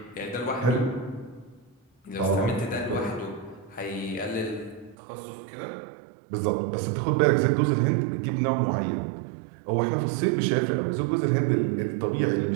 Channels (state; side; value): drops out; left; at 5.0 s